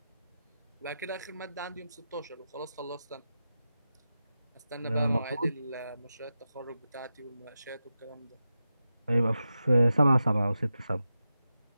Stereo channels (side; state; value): both; inverted; correlation -0.91